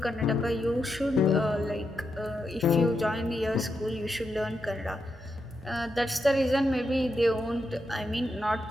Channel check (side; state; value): both; normal; correlation 0.84